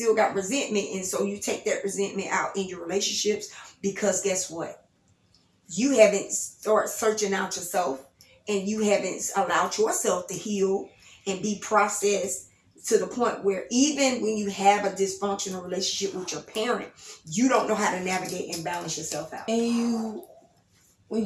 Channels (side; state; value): both; identical; correlation 1.00